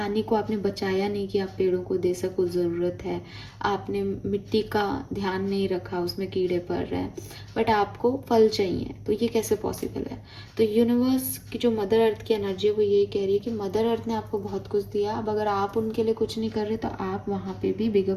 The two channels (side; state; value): both; identical; correlation 1.00